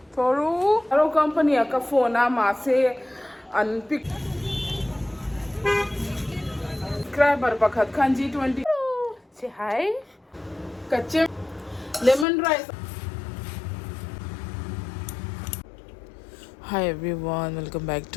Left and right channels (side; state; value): right; drops out; at 12.2 s